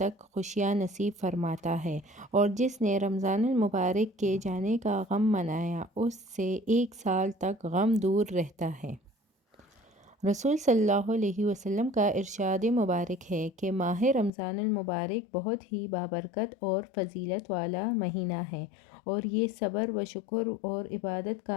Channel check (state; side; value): drops out; right; at 14.3 s